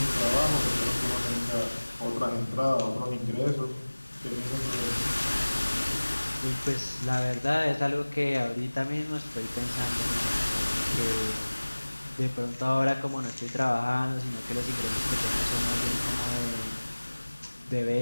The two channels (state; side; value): inverted; both; correlation -1.00